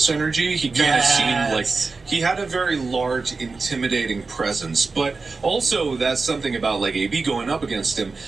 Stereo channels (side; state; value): left; quieter; 4.1 dB